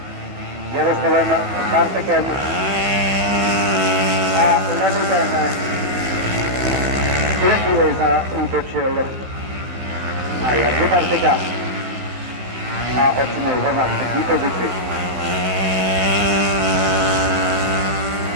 Jaroslavem Bartekem a Levitem chvíli zaútočil a Jardu Bartika a odsunul ho na třetí pozici.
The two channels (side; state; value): left; late; 15 ms